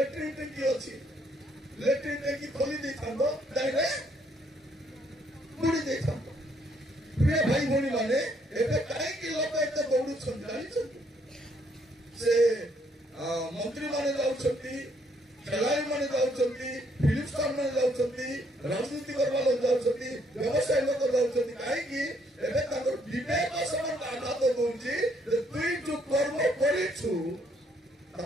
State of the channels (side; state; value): both; normal; correlation 0.69